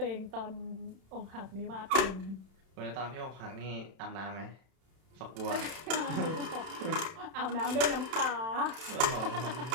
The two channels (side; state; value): left; late; 31 ms